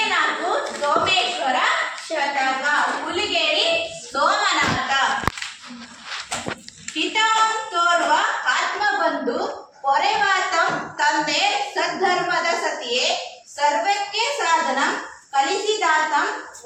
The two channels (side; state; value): both; identical; correlation 1.00